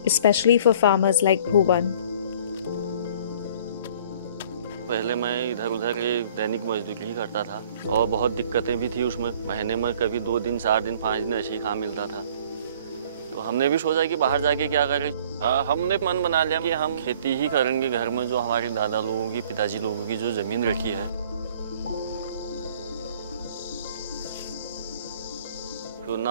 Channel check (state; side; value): inverted; both; correlation -0.53